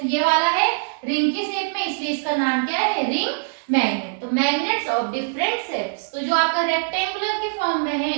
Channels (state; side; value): silent; left; digital silence